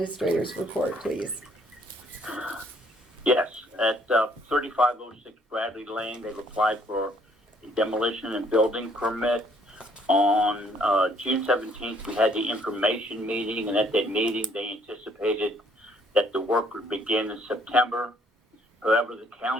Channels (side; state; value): both; normal; correlation 0.64